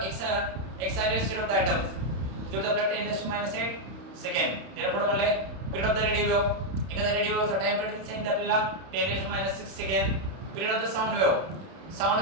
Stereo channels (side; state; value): left; late; 31 ms